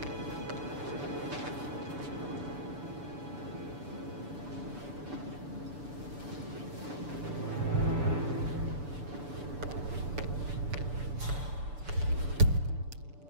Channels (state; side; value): late; left; 6.9 ms